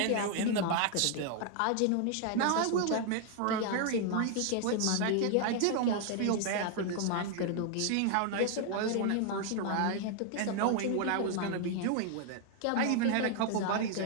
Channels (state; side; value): different; both; correlation 0.00